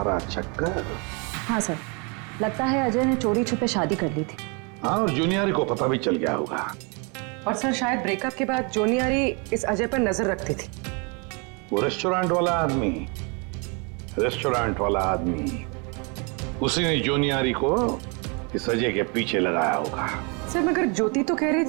चक्कर? हाँ सर, लगता है अजय ने चोरी छुपे शादी कर ली थी। हाँ, और जूनियर को पता भी चल गया होगा। और सर शायद ब्रेकअप के बाद जोनियारी इस अजय पर नजर रखती थी। वो रेस्टोरेंट वाला आदमी, उसी ने जोनियारी को इस अजय के पीछे लगाया होगा। सर मगर ज्योति तो कह रही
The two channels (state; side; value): quieter; left; 33.2 dB